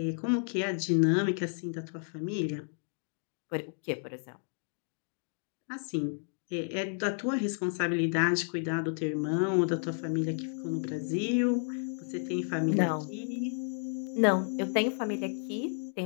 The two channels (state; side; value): silent; right; 56 dB below the other